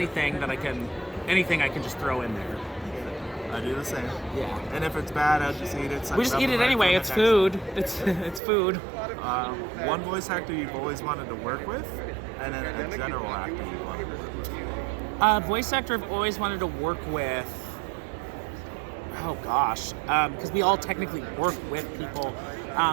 I can just throw in there. I do the same. Yeah. And if it's bad, I'll just eat it. We just eat it anyway. It's food. It's food. One voice actor you've always wanted to work with, and then a general actor you want to work with. Voice actor I've always wanted to work with. Oh gosh, because we all technically work with people,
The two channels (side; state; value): left; drops out; at 8.4 s